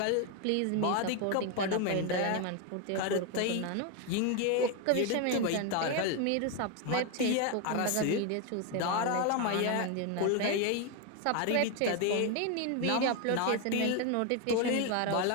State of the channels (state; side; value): different; both; correlation 0.02